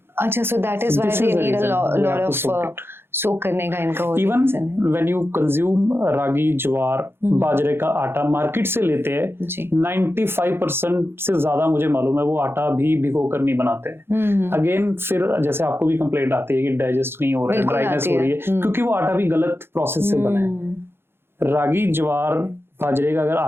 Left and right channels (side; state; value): left; late; 0.11 ms